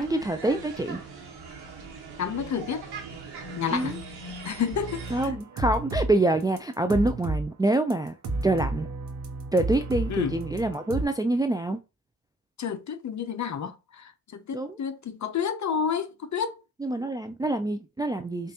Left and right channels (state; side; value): normal; both; correlation 0.61